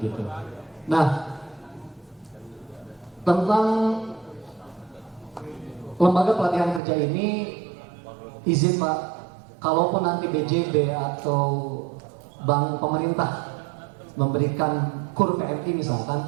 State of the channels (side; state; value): left; drops out; at 6.8 s